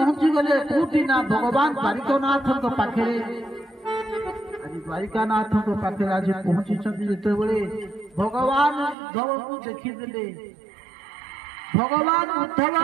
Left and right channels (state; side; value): drops out; left; at 9.0 s